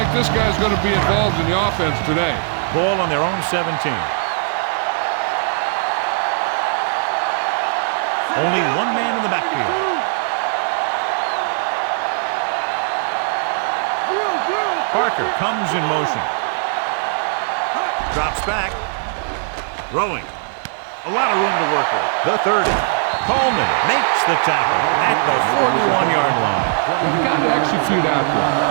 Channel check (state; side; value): silent; left; digital silence